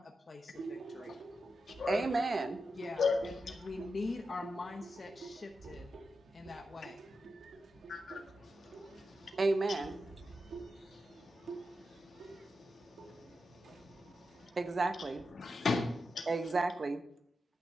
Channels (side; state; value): both; normal; correlation 0.89